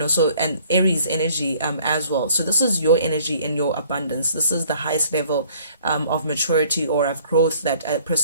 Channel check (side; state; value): both; inverted; correlation -0.57